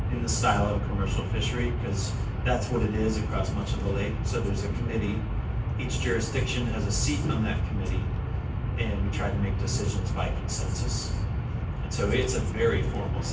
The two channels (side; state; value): both; identical; correlation 1.00